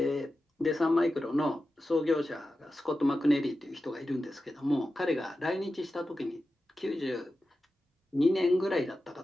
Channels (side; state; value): both; normal; correlation 0.92